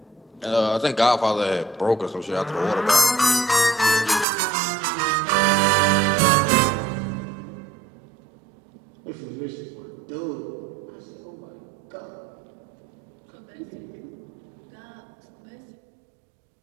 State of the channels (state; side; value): drops out; left; at 4.2 s